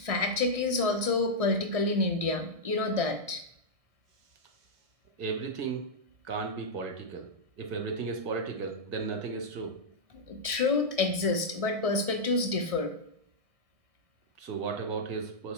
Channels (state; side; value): late; left; 1.6 ms